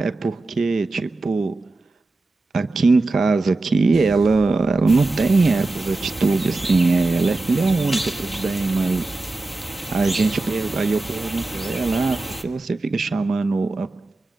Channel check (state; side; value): quieter; left; 3.2 dB